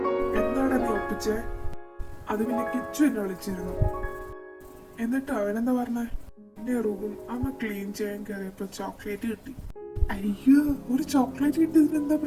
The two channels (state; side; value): identical; both; correlation 1.00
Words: എന്താണ് നീ ഒപ്പിച്ചേ? അത് പിന്നെ കിച്ചു എന്നെ വിളിച്ചിരുന്നു. എന്നിട്ട് അവനെന്താ പറഞ്ഞേ? എന്റെ റൂം അമ്മ ക്ലീൻ ചെയ്യാൻ കയറിയപ്പോ ചോക്ലേറ്റ് കിട്ടി. അയ്യോ, ഒരു ചോക്ലേറ്റ് കിട്ടിയതിന് എന്താ